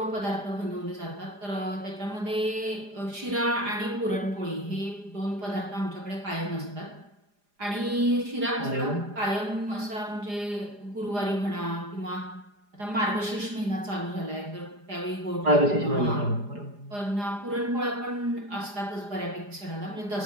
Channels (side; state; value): left; late; 4.9 ms